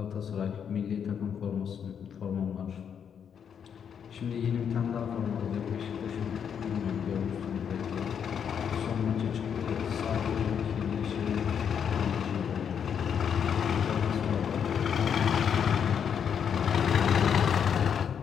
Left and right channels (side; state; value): right; quieter; 7.8 dB